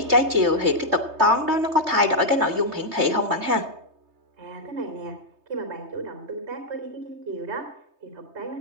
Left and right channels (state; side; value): late; left; 3.2 ms